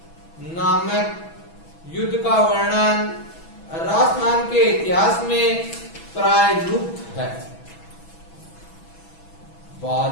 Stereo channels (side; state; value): right; late; 6.1 ms